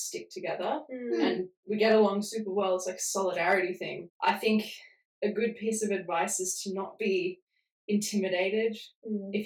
together and we get along super well. It's like a solidarity thing. I think a good piece of advice is to not be intimidated. If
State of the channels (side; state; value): both; identical; correlation 1.00